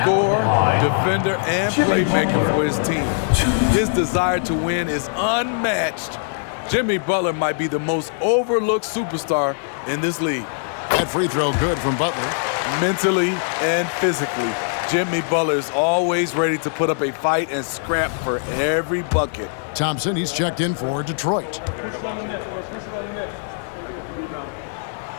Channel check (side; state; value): right; silent; 60 dB below the other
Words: defender, and playmaker for his team. His desire to win is unmatched. Jimmy Butler might be the most overlooked superstar in this league. That free throw good from Butler. Mentally and physically, Jimmy Butler is always ready to put up a fight and scrap for every bucket. Thompson, he's checked in for Detroit.